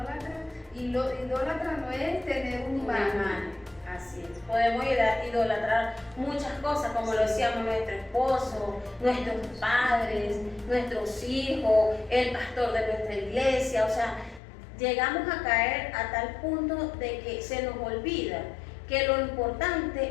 Y lo idólatra no es tener un imán. Así es. Podemos idolatrar muchas cosas, como lo decíamos, nuestro esposo, nuestros padres, nuestros hijos, el pastor de nuestra iglesia. O sea, llegamos a caer a tal punto de que se nos olvida que lo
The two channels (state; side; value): drops out; right; at 14.4 s